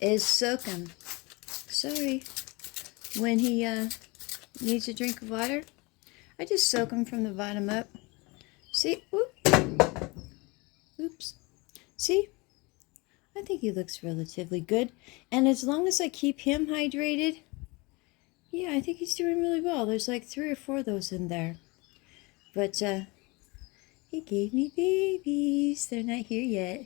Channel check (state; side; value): quieter; right; 26.1 dB